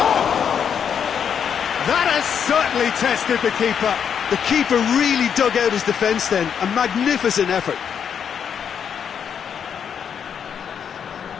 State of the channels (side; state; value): right; quieter; 7.7 dB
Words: That has certainly tested the keeper. The keeper really dug out his defence then. A magnificent effort.